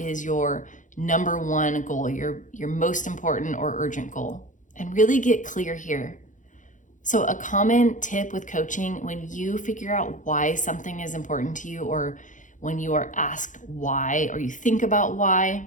your number 1 goal, your most important or urgent goal? And really get clear here. So a common tip with coaching, when you figure out why something is important to you, or when you are asked why, or you think about why,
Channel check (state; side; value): late; right; 0.37 ms